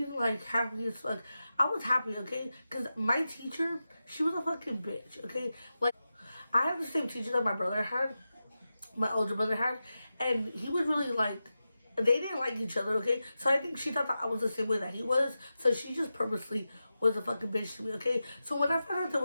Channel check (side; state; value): both; inverted; correlation -0.92